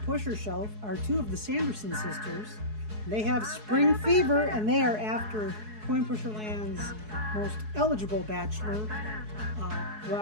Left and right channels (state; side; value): late; left; 4.7 ms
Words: pusher shelf, are two of the Sanderson sisters. They have spring fever, and they are after Coin Pusher Land's most eligible bachelor,